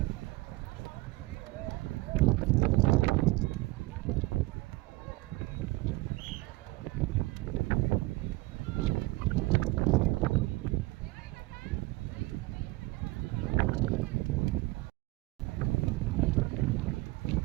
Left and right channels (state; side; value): quieter; left; 21.8 dB